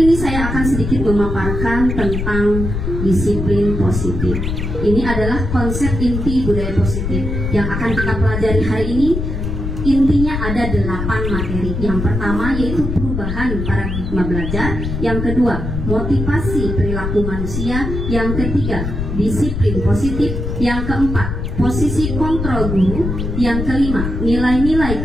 ini saya akan sedikit memaparkan tentang disiplin positif. Ini adalah konsep inti budaya positif yang akan kita pelajari hari ini. Intinya ada 8 materi. Yang pertama yaitu perubahan paradigma belajar. Yang kedua, motivasi perilaku manusia. Yang ketiga, disiplin positif. Yang keempat, posisi kontrol guru. Yang kelima, nilai-nilai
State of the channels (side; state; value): left; noise; rumble, 4 dB below the sound